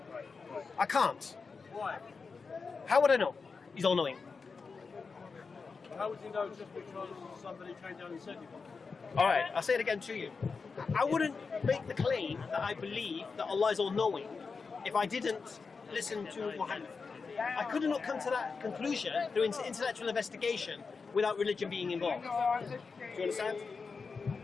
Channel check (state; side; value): quieter; right; 4.8 dB